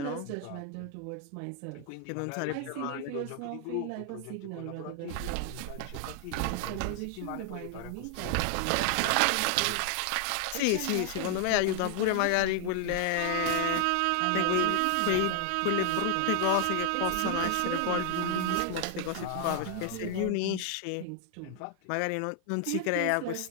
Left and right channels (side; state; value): both; different; correlation 0.00